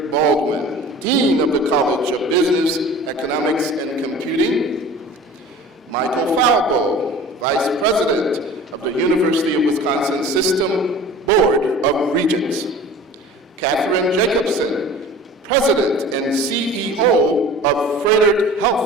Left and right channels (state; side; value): normal; both; correlation 0.41